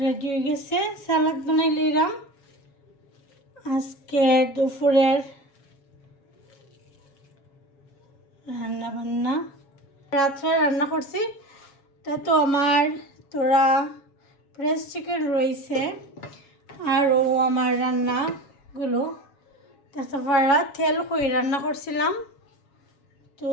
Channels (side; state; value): right; late; 7.2 ms